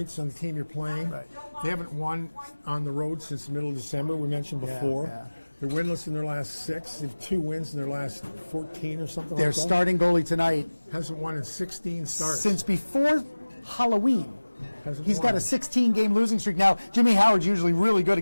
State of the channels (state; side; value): inverted; both; correlation -1.00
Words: on the team you're playing. They haven't won on the road since the middle of December, we mentioned before. They're winless in their last 6. They have 2 wins in their last 14 or something Their like that. Their starting goalie tonight hasn't won in 16 starts. Since before Halloween. He's got a 16-game losing streak. Now, Jimmy Howard's usually really good